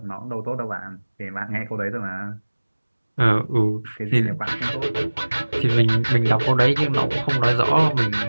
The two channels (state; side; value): inverted; both; correlation -1.00